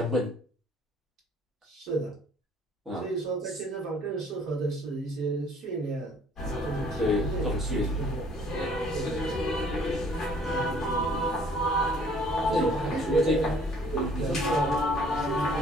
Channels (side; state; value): both; normal; correlation 0.57